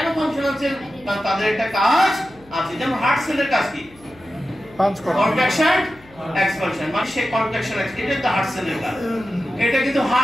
ফাংশনাল সেল? কারণ তাদের একটা কাজ আছে। যেমন হার্ট সেলের কাজ কি? পাঞ্চ করা, কন্ট্রাকশন, এক্সপানশন। মানে সেই কন্ট্রাকশন, এটা তো হার্ট সেলের কাজ। এটা কিন্তু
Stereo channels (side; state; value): left; noise; hum, 25 dB below the sound